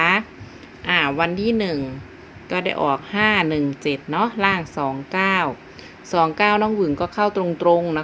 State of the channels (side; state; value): both; identical; correlation 1.00